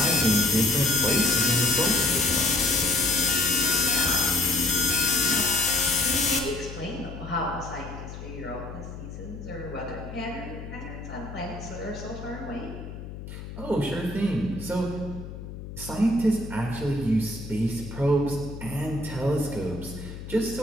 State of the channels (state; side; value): noise; left; hum, 11 dB below the sound